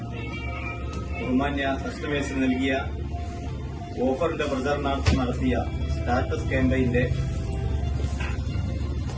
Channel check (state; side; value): identical; both; correlation 1.00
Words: ബഹുമാന്യ കസ്റ്റമേഴ്സിന് നൽകിയ ഓഫറിന്റെ പ്രചരണാർത്ഥം നടത്തിയ സ്റ്റാറ്റസ് ക്യാമ്പയിന്റെ